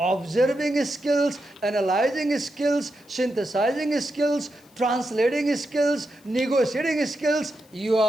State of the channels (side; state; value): left; noise; hiss, 29 dB below the sound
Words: skills, analyzing skills, synthesizing skills, translating skills, negotiating skills, you